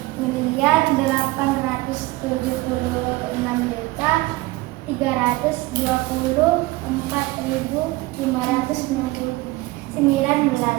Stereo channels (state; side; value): quieter; left; 20.6 dB